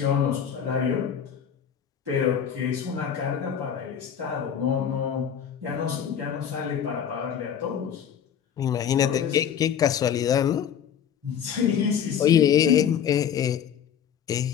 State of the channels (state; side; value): quieter; right; 8.5 dB